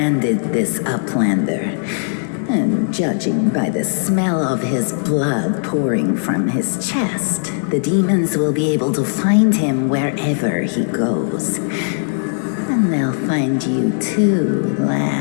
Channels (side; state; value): right; silent; digital silence